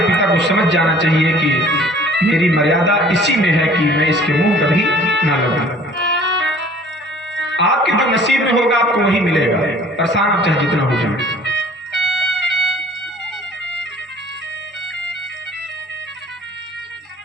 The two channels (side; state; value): both; normal; correlation 0.51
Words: पिता को समझ जाना चाहिए कि मेरी मर्यादा इसी में है कि मैं इसके मुंह कभी ना लगूं। आपके जो नसीब में होगा आपको वही मिलेगा, परेशान आप चाहे जितना हो जाए।